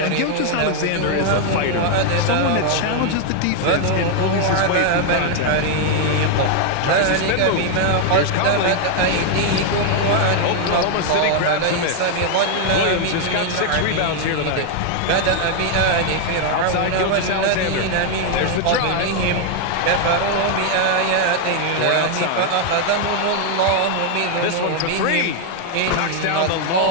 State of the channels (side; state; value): both; different; correlation 0.00